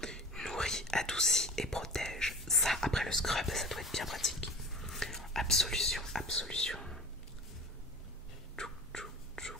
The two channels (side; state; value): both; normal; correlation 0.35